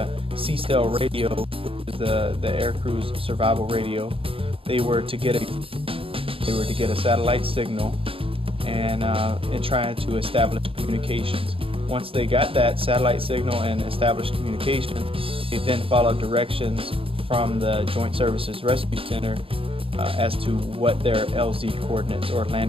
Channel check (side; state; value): left; late; 0.27 ms